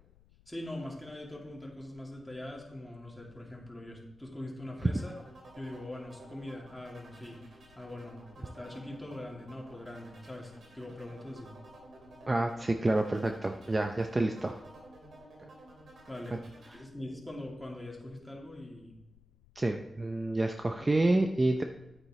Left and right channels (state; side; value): noise; left; rumble, 25 dB below the sound